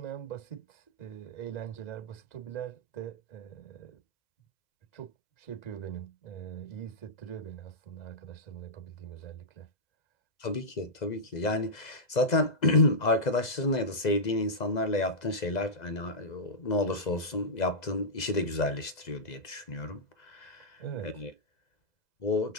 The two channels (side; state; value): right; late; 2.0 ms